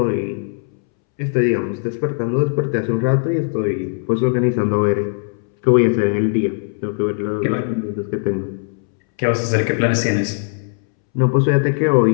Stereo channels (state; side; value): silent; right; 66 dB below the other